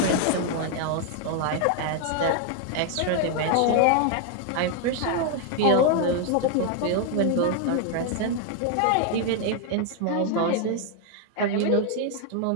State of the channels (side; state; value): both; different; correlation 0.00